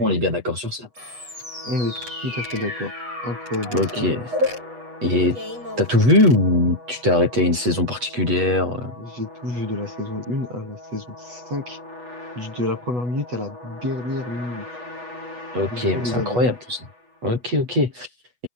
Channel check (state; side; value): late; left; 8.2 ms